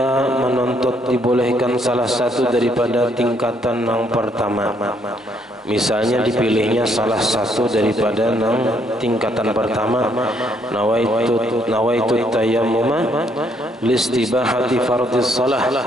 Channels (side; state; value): both; normal; correlation 0.70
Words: menuntut dibolehkan salah satu daripada tingkatan yang pertama, misalnya dipilihnya salah satu daripada tingkatan pertama, nawaitu tayammuma listibahati fardhis shalah.